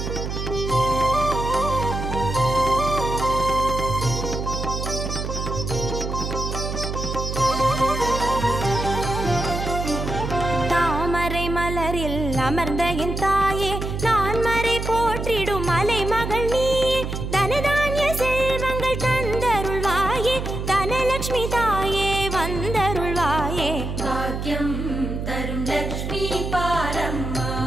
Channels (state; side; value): noise; right; hum, 4 dB below the sound